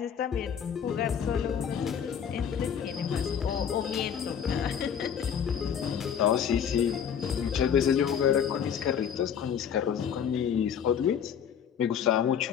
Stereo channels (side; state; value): right; quieter; 8.1 dB